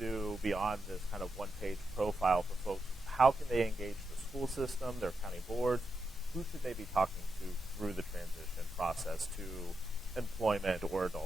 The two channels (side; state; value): both; normal; correlation 0.86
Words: beyond this kind of one-page profile for folks? How can they engage the school system, their county boards? Who should they be talking to through the transition process to employment or